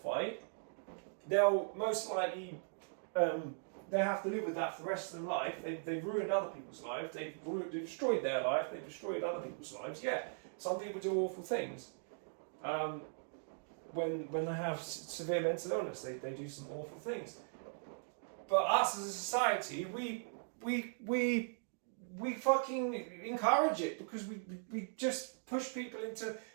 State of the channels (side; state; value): left; silent; digital silence